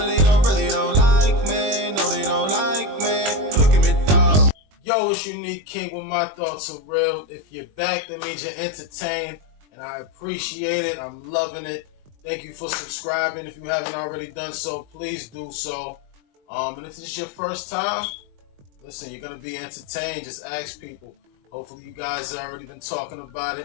don't like me, no they don't like me. Look at me, dog. Yo, it's Unique King with my thoughts are real. If you're back, that means you're entertained, and I appreciate it. I'm loving it. Thank you for subscribing. If you haven't already done so, please do so. And if this is your first time, listen, you're gonna be entertained. Just ask people. Hopefully you guys have already been talking about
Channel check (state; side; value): late; left; 21 ms